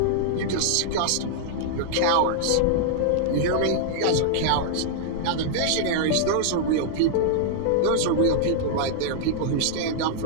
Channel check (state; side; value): different; both; correlation -0.01